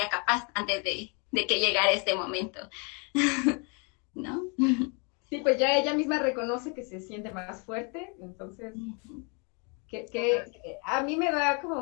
capaz antes de que llegara este momento, ¿no? Sí, pues ya ella misma reconoce que se siente más fuerte, entonces, a mí me da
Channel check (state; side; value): quieter; right; 34.8 dB